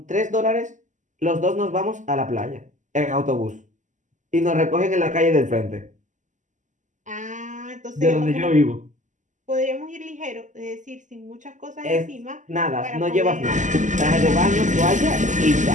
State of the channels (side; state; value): left; late; 0.36 ms